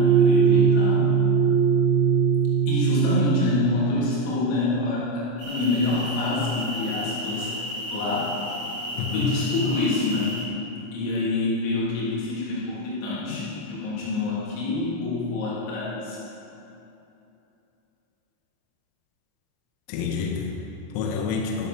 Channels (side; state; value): right; late; 24 ms